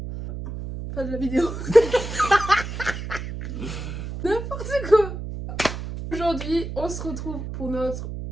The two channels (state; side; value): noise; right; hum, 7 dB below the sound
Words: Pas de la vidéo. N'importe quoi. Aujourd'hui, on se retrouve pour notre